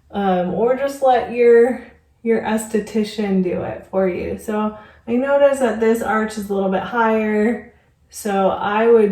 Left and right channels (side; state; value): both; identical; correlation 1.00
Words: or just let your esthetician do it for you. So I noticed that this arch is a little bit higher, so I